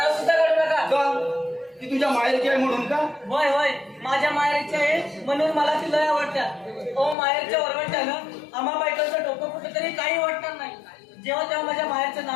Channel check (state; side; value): drops out; right; at 7.2 s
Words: सुद्धा काढू नका. का ती तुझ्या माहेरची आहे म्हणून का? होय होय माझ्या माहेरची आहे म्हणून मला ती लय आवडत्या. ओ माहेरच्या वरवंट्यानं आम्हा बायकांचं डोकं कुठं तरी काही वाटणार नाही. जेव्हा तेव्हा माझ्या माहेरचं